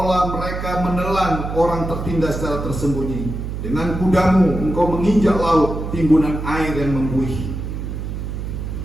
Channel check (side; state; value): right; noise; hum, 5 dB below the sound